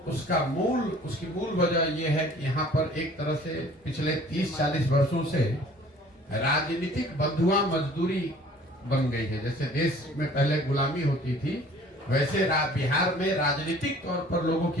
उसकी मूल वजह यह है कि यहाँ पर एक तरह से पिछले 30-40 वर्षों से राजनीतिक बंधुआ मजदूरी बन गई है। जैसे देश में पहले गुलामी होती थी, वैसे बिहार में राजनीतिक तौर पर लोगों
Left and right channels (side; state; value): both; normal; correlation 0.51